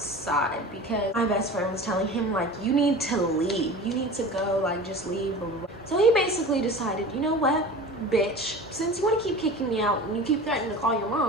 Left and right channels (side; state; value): both; normal; correlation 0.36